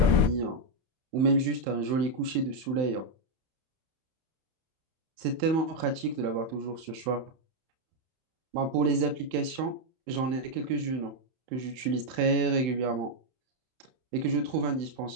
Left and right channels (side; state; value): left; late; 31 ms